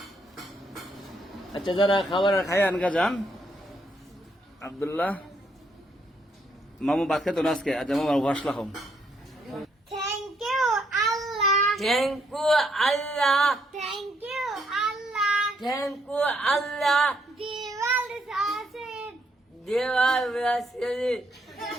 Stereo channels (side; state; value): both; normal; correlation 0.73